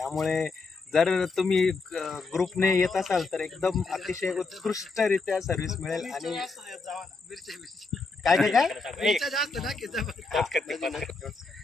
जर तुम्ही ग्रुपने येत असाल तर एकदम अतिशय उत्कृष्टरित्या सर्व्हिस मिळेल. आणि काय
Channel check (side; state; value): right; quieter; 3.9 dB